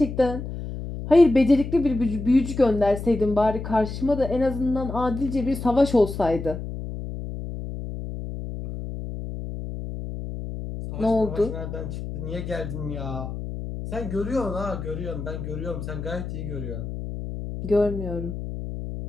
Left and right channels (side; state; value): left; noise; hum, 7 dB below the sound